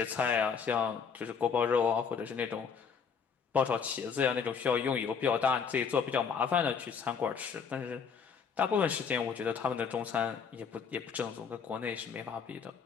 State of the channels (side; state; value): right; quieter; 6.3 dB